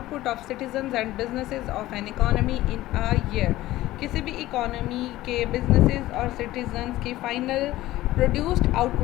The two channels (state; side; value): quieter; right; 16.3 dB